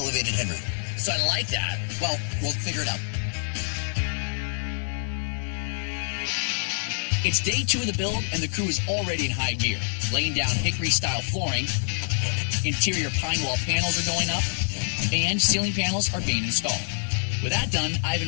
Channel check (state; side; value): silent; right; 56 dB below the other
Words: headroom. So I like that. Well, we'll figure it out. It's day 2 of the build, and the crew is already in high gear. Laying down hickory-style flooring, interior pine wall panels are going up, and ceiling panels are being installed. With that done, I've